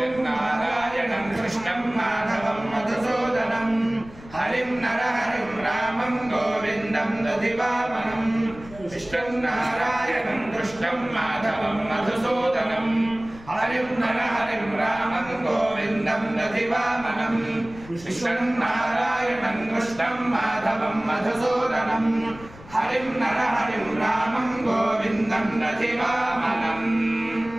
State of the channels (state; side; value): noise; left; rumble, 19 dB below the sound